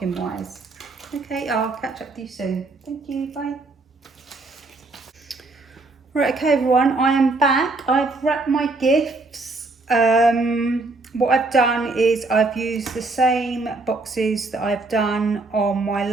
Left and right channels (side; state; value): left; quieter; 3.3 dB